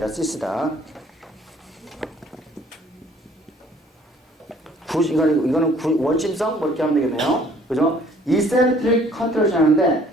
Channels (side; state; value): both; normal; correlation 0.58